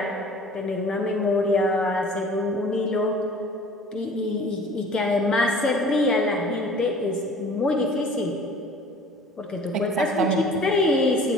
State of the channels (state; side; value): normal; both; correlation 0.47